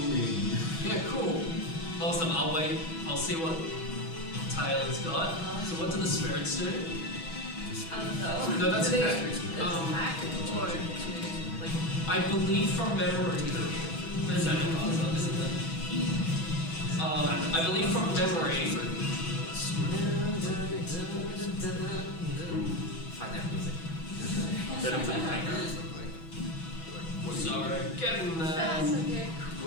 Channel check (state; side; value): late; right; 6.1 ms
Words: Yeah, cool. Awesome. I'll wait. I'll see what Taylor's got. So what do the spirits do? I don't know. No, that's Do they okay. attack or do they, like, I believe from memory. There's that in puzzle, isn't there? I believe from memory. Find that music. Set him to the background. Sorry, getting there. that's okay.